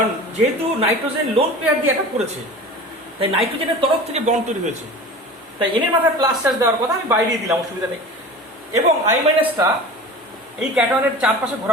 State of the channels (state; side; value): normal; both; correlation 0.36